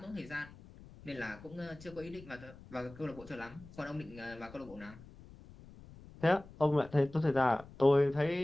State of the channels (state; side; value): noise; left; rumble, 19 dB below the sound